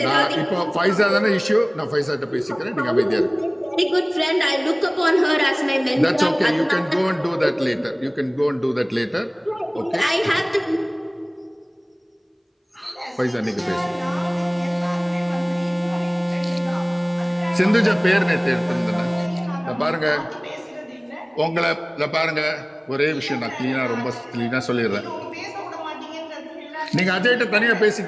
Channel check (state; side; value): identical; both; correlation 1.00